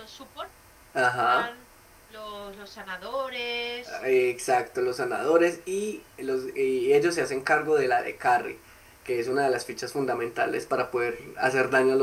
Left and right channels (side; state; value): both; identical; correlation 1.00